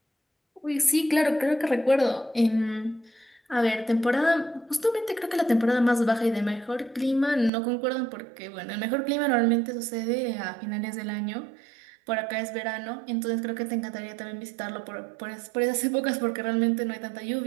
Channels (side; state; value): left; drops out; at 7.5 s